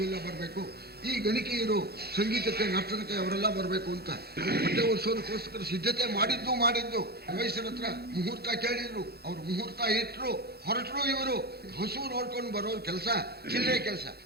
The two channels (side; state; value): left; late; 0.46 ms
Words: ಬರಬೇಕು. ಈ ಗಣಿಕೆಯರು ಸಂಗೀತಕ್ಕೆ ನರ್ತನಕ್ಕೆ ಅವರೆಲ್ಲ ಬರಬೇಕು ಅಂತ ಹೊಟ್ಟೆ ಉರಿಸೋದಕ್ಕೋಸ್ಕರ ಸಿದ್ಧತೆ ಮಾಡಿದ್ದು ವಯಸ್ಸರ ಹತ್ರ ಮುಹೂರ್ತ ಕೇಳಿದ್ರು, ಅವ್ರು ಮುಹೂರ್ತ ಇಟ್ರು, ಹೊರಟರು. ಇವರು ಹಸು ನೋಡ್ಕೊಂಡು ಬರೋ ಕೆಲಸ ಚಿಲ್ಲರೆ ಕೆಲಸ,